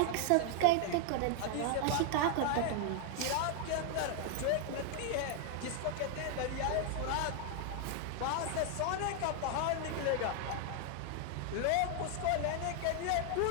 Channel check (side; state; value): both; different; correlation 0.00